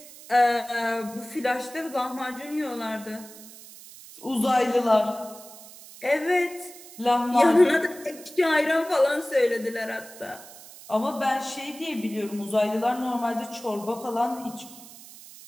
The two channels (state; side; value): noise; right; hiss, 18 dB below the sound